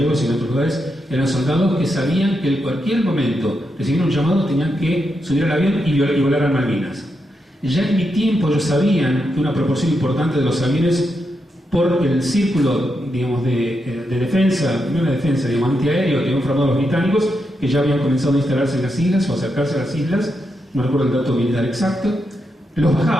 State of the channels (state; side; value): normal; both; correlation 0.84